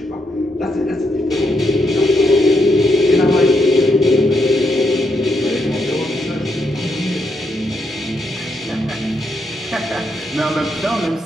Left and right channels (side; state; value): both; normal; correlation 0.79